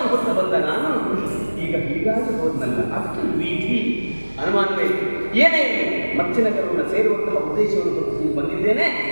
ಹೊತ್ತು ಬಂದ ನಾನು ಈಗ ಹೀಗಾಗಿ ಹೋದ್ನಲ್ಲ, ಅದಕ್ಕೆ ವಿಧಿ ಅನುಮಾನವೇ ಏನೇ ಮತ್ಸ್ಯನಗರವನ್ನು ಸೇರುವಂತಹ ಉದ್ದೇಶವನ್ನು ಹೊತ್ತು ಬಂದಿದ್ದೇನೆ.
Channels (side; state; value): both; inverted; correlation -1.00